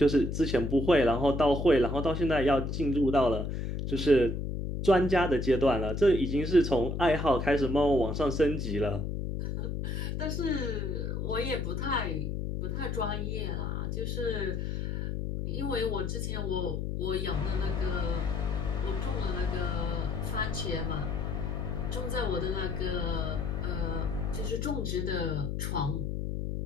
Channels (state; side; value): noise; left; hum, 2 dB below the sound